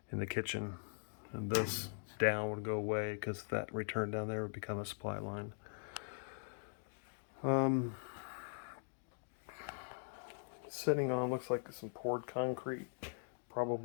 in the kitchen. And this down would go away because that return down there would become a supply line. Sitting on looks like some poured concrete.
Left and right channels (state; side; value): silent; right; digital silence